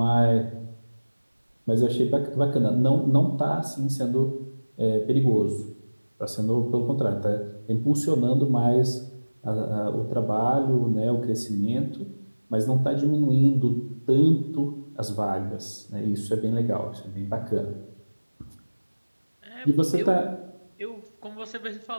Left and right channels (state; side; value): inverted; both; correlation -1.00